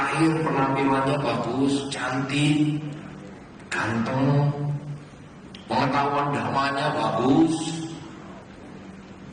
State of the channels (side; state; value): both; identical; correlation 1.00